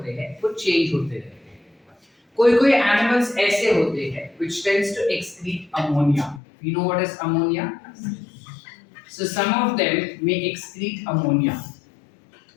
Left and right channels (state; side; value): drops out; right; at 6.4 s